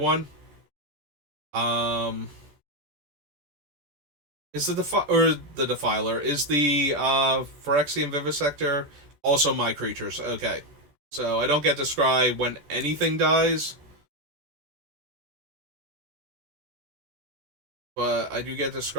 Is the Defiler, is the Phyrexian Vivisector also my creatures? Okay. So I don't get to scry when anything dies. But I do get to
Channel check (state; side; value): late; left; 14 ms